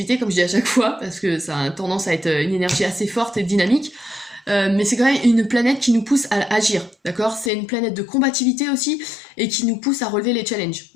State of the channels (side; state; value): right; drops out; at 7.5 s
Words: comme je dis à chaque fois, parce que ça a tendance à être une énergie assez forte et dynamique. Mais c'est quand même une planète qui nous pousse à agir, d'accord? C'est une planète de combativité aussi, et qui nous pousse à relever les challenges,